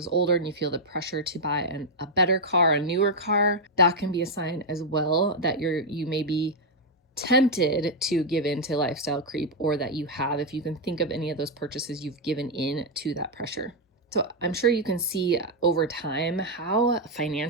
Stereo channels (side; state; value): both; normal; correlation 0.00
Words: older and you feel the pressure to buy a better car, a newer car, that can be a sign as well that you may be tempted to give in to lifestyle creep, or that you have, if you can think of any of those purchases, you've given in to that pressure. So I'm sure you can see over time how